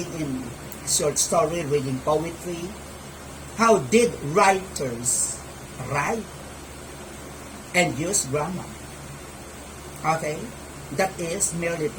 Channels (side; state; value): both; identical; correlation 1.00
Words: in short story, reading poetry. How did writers write and use grammar? Okay? That is merely